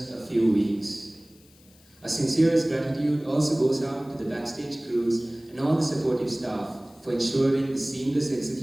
a few weeks. Our sincerest gratitude also goes out to the backstage crews and all the supportive staff for ensuring the seamless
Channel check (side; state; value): left; noise; hiss, 28 dB below the sound